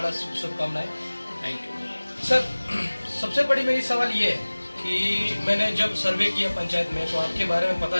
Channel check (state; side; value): inverted; both; correlation -1.00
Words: शुभकामनाएं। थैंक यू सर, सबसे बड़ी मेरी सवाल ये है कि मैंने जब सर्वे किया पंचायत में तो आपके बारे में